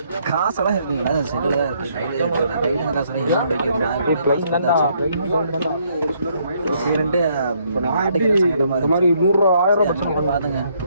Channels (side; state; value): both; inverted; correlation -0.70